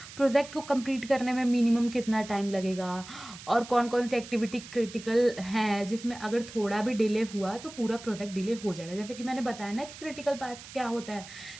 प्रोजेक्ट को कंप्लीट करने में मिनिमम कितना टाइम लगेगा, और कौन कौन सी एक्टिविटी क्रिटिकल है जिसमें अगर थोड़ा भी डिले हुआ तो पूरा प्रोजेक्ट डिले हो जाएगा। जैसे कि मैंने बताया ना कि क्रिटिकल पाथ क्या होता है,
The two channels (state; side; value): noise; right; hiss, 15 dB below the sound